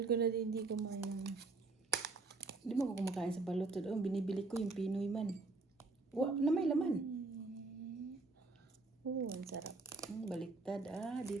ko na din hindi kumain ng... Hindi mo ako kumakain sa balot. Oh, binibili ko yung Pinoy man. Na may laman. ang sarap. Baliktad.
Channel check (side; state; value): left; quieter; 3.6 dB